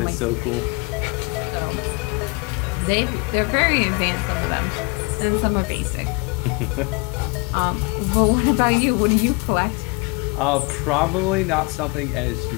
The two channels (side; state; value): right; quieter; 28.5 dB